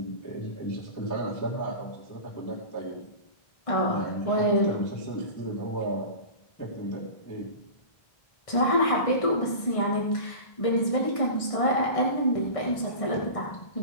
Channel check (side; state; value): right; late; 1.6 ms